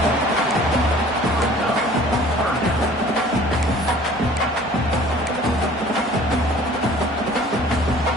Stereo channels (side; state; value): both; normal; correlation 0.50